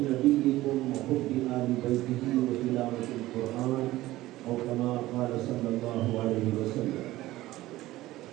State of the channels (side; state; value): left; quieter; 16.7 dB